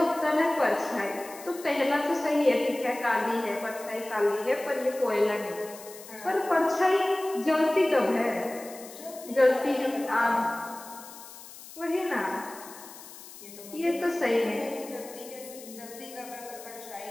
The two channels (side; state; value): left; noise; hiss, 16 dB below the sound